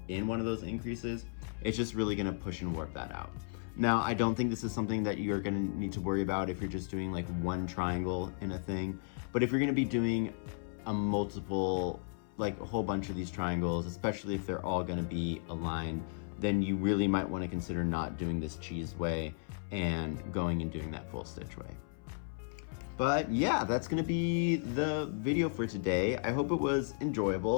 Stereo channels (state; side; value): silent; right; 55 dB below the other